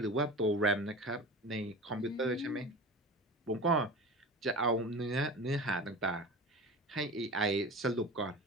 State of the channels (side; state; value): both; normal; correlation 0.33